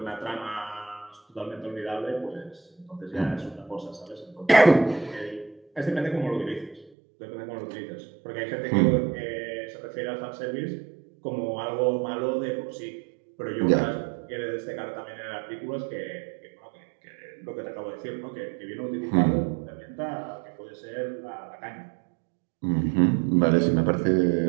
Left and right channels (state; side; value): drops out; left; at 6.9 s